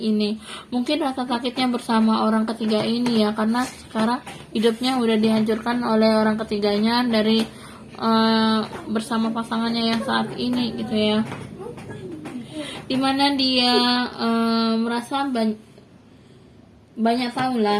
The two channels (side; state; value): both; identical; correlation 1.00